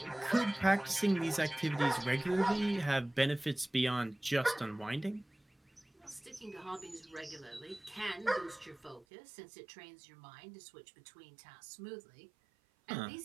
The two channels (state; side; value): drops out; left; at 9.1 s